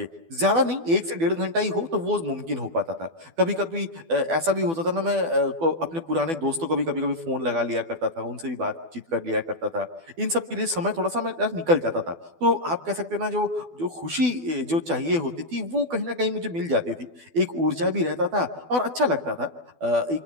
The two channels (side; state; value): left; late; 12 ms